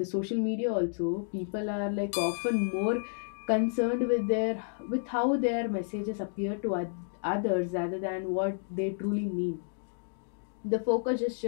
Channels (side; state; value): right; silent; digital silence